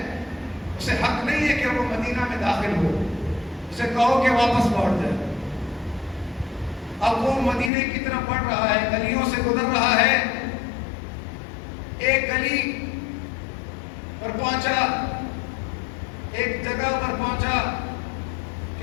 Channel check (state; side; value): drops out; right; at 7.7 s